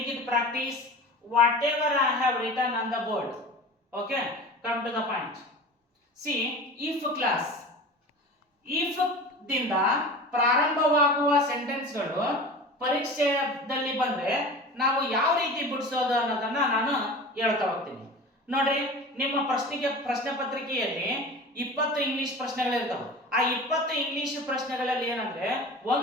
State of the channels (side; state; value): both; normal; correlation 0.35